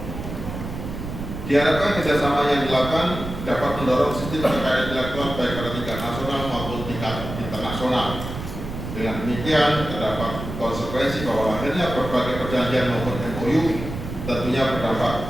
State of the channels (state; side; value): noise; right; rumble, 8 dB below the sound